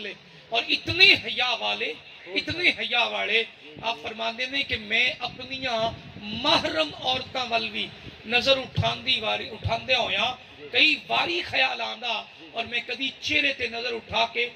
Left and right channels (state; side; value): identical; both; correlation 1.00